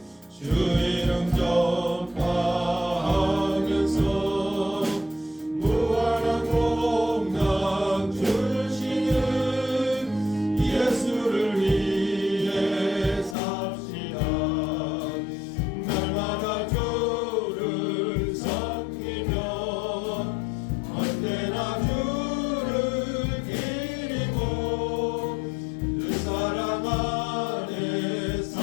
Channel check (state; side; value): drops out; right; at 13.4 s